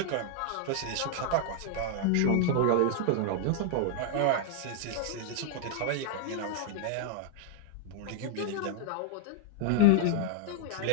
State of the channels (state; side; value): different; both; correlation -0.01